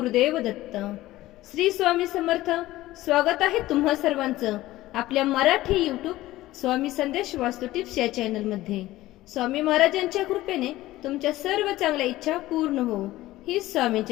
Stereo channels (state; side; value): quieter; right; 16.6 dB